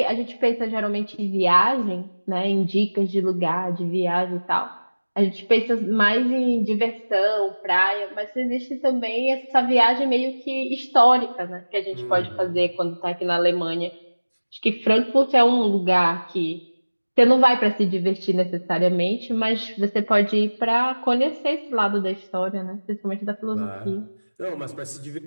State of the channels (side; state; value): both; inverted; correlation -1.00